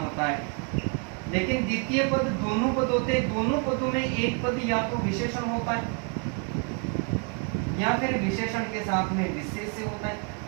है, लेकिन द्वितीय पद दोनों पद होते हैं। दोनों पदों में एक पद या तो विशेषण होता है या फिर विशेषण के साथ में विशेष्य होता है,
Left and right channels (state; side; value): quieter; left; 36.5 dB